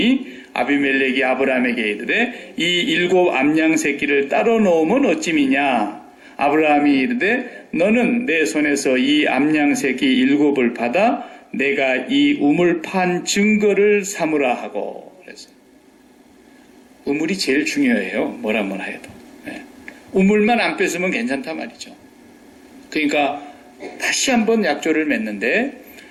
아비멜렉이 아브라함에게 이르되 이 7 암양 새끼를 따로 넣으면 어찌미냐. 아브라함이 이르되 너는 내 손에서 이 암양 새끼 7을 받아 내가 이 우물 판 증거를 삼으라 하고. 우물이 제일 중요해요. 뭐라 해도. 우물만 안 뺐으면 괜찮단 말이죠. 그러니까 다시 한번 약조를 맺는데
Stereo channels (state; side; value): identical; both; correlation 1.00